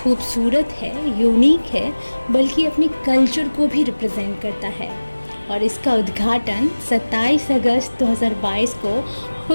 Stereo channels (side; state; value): both; inverted; correlation -1.00